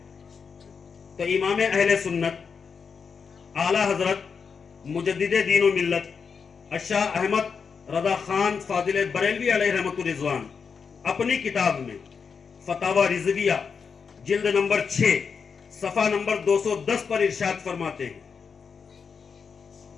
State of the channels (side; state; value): right; quieter; 5.9 dB